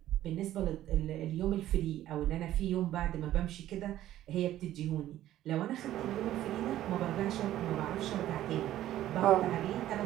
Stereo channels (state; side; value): quieter; left; 13.3 dB